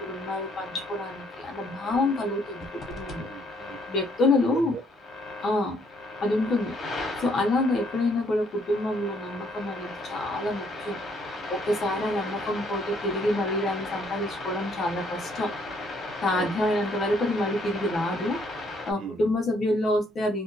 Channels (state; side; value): normal; both; correlation 0.67